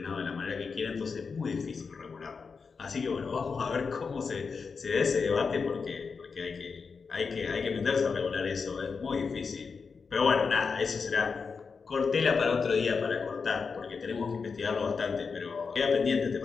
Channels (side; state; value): right; quieter; 5.2 dB